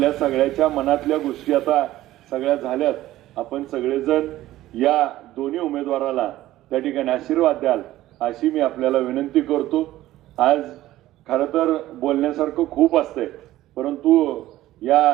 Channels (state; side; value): quieter; left; 15.2 dB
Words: सगळ्याच्या मनातल्या गोष्टी आता सगळ्या झाल्यात. आपण सगळेजण या दोन्ही उमेदवाराला त्या ठिकाणी आशीर्वाद द्याल अशी मी आपल्याला विनंती करतो. आज खरं तर बोलण्यासारखं खूप असतंय, परंतु